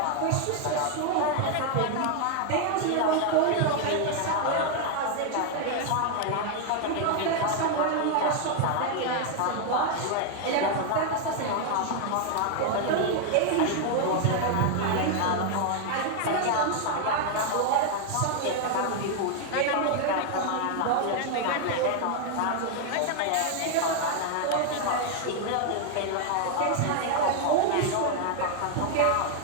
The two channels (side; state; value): both; different; correlation 0.00